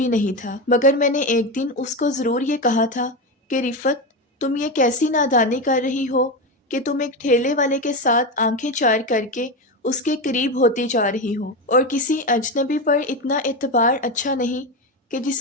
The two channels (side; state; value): both; normal; correlation 0.16